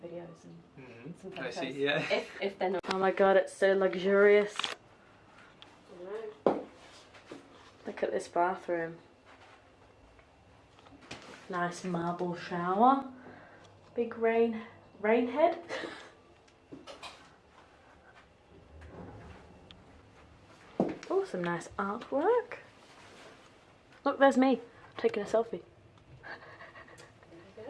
and some photos. I see, yeah. If they're not. Oh my god, it's so luxurious. Look at this bathroom. Nice marble shower. Big rain head. Oh, some nice artwork. Look, there's me taking a selfie. There you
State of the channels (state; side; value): identical; both; correlation 1.00